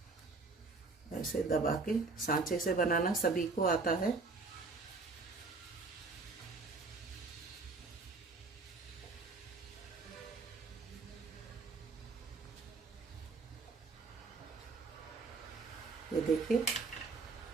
ऐसे दबा के, सांचे से बनाना सभी को आता है। ये देखिए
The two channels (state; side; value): quieter; left; 4.0 dB